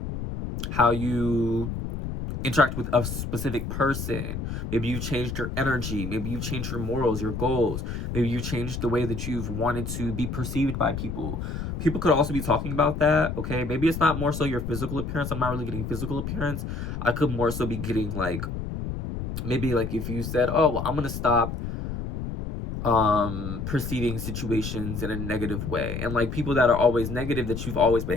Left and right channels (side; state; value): left; noise; rumble, 5 dB below the sound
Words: how you interact with a specific person. Maybe you changed your energy. Maybe you changed your morals, your goals. Maybe you changed the way that you've wanted to be perceived by people. People could also be talking about that, okay? Maybe it's not more so your physical appearance. I'm not really getting physical appearance. I could more so be getting like, maybe like if you said, oh, well, I'm going to stop perceiving situations in a negative way, and like people that are always negative, that you've always